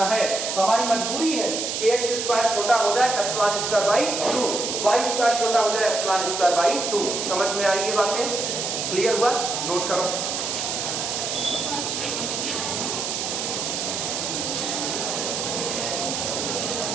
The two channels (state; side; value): noise; right; hiss, 2 dB below the sound